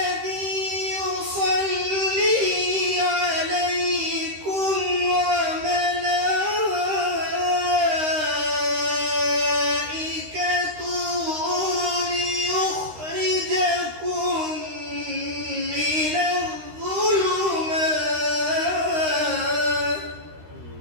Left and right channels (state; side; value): late; left; 13 ms